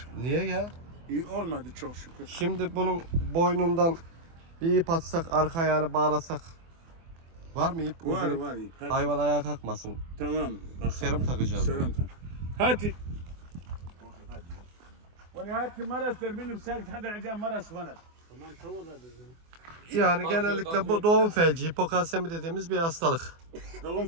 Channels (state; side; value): late; left; 24 ms